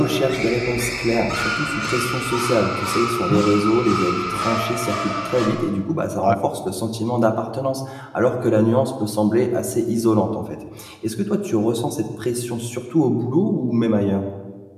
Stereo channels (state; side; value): identical; both; correlation 1.00